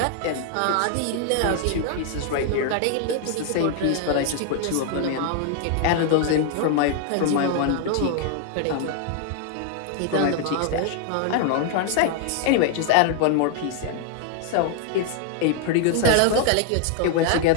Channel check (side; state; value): both; different; correlation 0.00